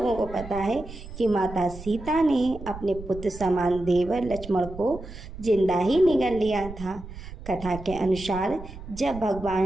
को पता है कि माता सीता ने अपने पुत्र समान देवर लक्ष्मण को जिंदा ही निगल लिया था। कथा के अनुसार जब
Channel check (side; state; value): right; noise; rumble, 13 dB below the sound